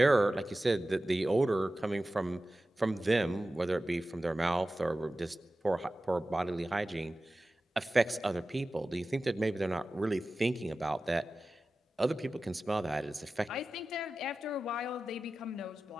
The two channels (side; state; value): both; normal; correlation 0.95